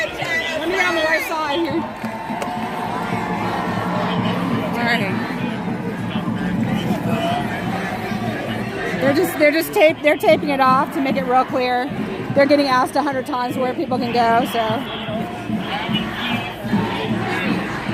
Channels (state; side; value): identical; both; correlation 1.00